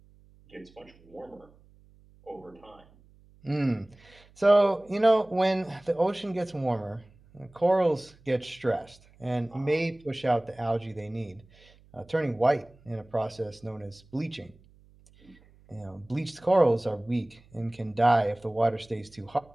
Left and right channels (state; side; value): noise; right; hum, 28 dB below the sound